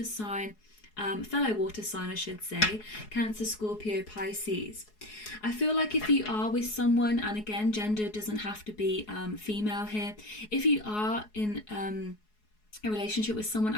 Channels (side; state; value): right; late; 4.7 ms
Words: sign, fellow water sign I should say, Cancer, Scorpio, Pisces. I feel like if you are with someone, and again, gender doesn't have to be female here, if you are in a relationship with someone,